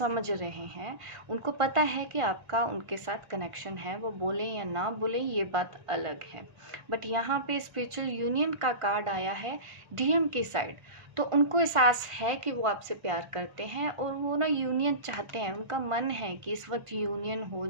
रहे हैं, उनको पता है कि आपका उनके साथ कनेक्शन है, वो बोले या ना बोले ये बात अलग है। बट यहाँ पे स्पिरिचुअल यूनियन का कार्ड आया है डीएम की साइड, तो उनको एहसास है कि वो आपसे प्यार करते हैं और वो ना यूनियन चाहते हैं, उनका मन है कि इस वक्त यूनियन हो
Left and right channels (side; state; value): left; late; 1.4 ms